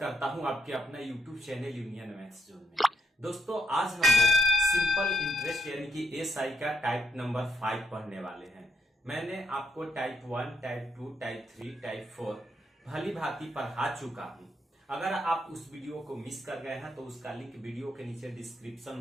हूं आपके अपना YouTube channel union maths zone में। दोस्तों आज हम लोग सिंपल इंटरेस्ट यानी कि एसआई का टाइप नंबर 5 पढ़ने वाले हैं। मैंने आपको टाइप 1, टाइप 2, टाइप 3, टाइप 4 भली भांति पढ़ा चुका हूं। अगर आप उस वीडियो को मिस कर गए हैं तो उसका लिंक वीडियो के नीचे डिस्क्रिप्शन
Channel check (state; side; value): normal; both; correlation 0.76